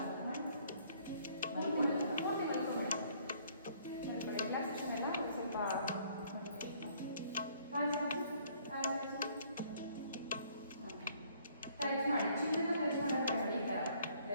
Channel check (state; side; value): inverted; both; correlation -0.62